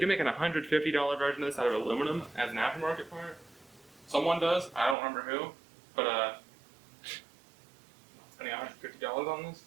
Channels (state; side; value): drops out; left; at 5.0 s